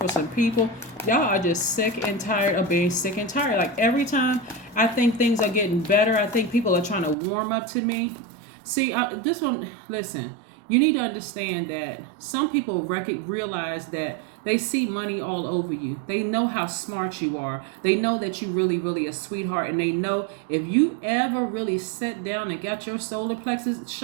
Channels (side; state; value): left; drops out; at 7.2 s